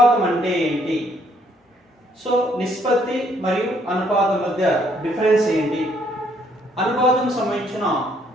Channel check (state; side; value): normal; both; correlation 0.67